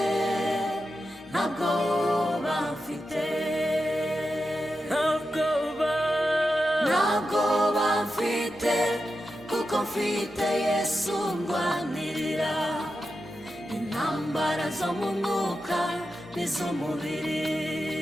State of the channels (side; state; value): both; normal; correlation 0.89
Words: ntabwo bamfite kuko mfite Yesu ndwanirira intambara zo mu mwuka n'iz'umubiri.